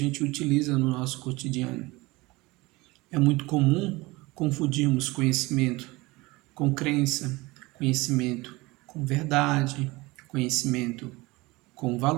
utiliza no nosso cotidiano. É muito comum confundirmos conhecimento com crença, conhecimento com verdade, conhecimento com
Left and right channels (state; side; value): quieter; left; 22.2 dB